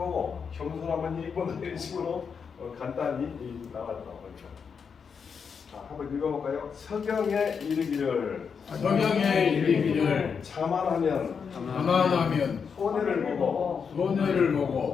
겸손하면 이익 본다 이런 식으로 간단히 나왔다고 합니다. 자, 한번 읽어볼까요? 서경에 이르기를 성경에 이르기를 자만하면 가만하면 손해를 보고 손해를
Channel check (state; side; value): quieter; right; 6.2 dB